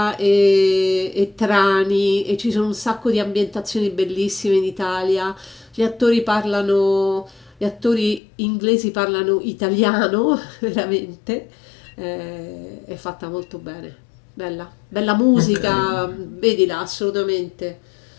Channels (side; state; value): right; drops out; at 8.2 s